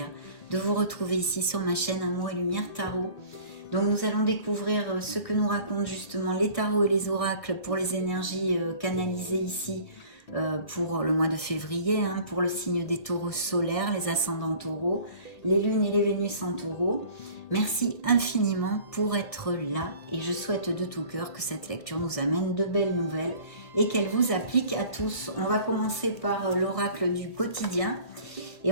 de vous retrouver ici sur ma chaîne Amour et Lumière Tarot. Donc nous allons découvrir ce que nous racontent justement les tarots et les oracles pour les énergies canalisées ici pour le mois de février, pour le signe des taureaux solaires, les ascendants taureaux, les lunes et les vénus en taureau. Merci infiniment pour être là et je souhaite de tout cœur que cette lecture nous amène de belles nouvelles et qu'elle vous applique à tous. On va commencer par l'oracle du quotidien et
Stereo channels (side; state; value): right; late; 1.7 ms